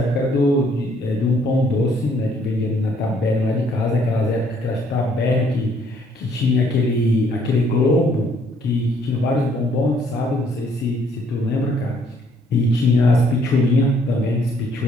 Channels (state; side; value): normal; both; correlation 0.65